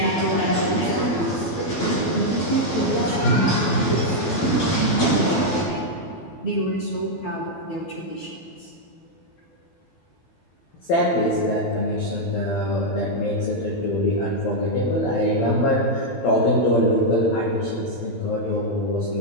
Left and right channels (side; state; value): right; late; 12 ms